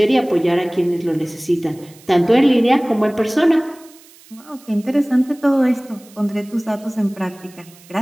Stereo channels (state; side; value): noise; right; hiss, 25 dB below the sound